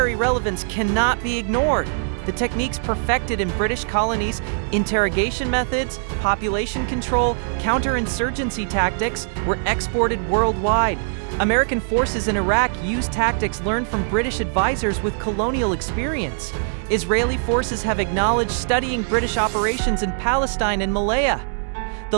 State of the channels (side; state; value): left; silent; 64 dB below the other